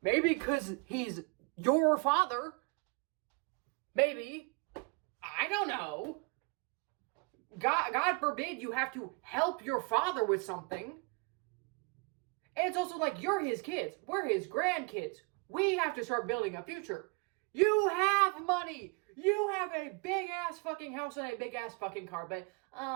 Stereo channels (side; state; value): left; quieter; 31.6 dB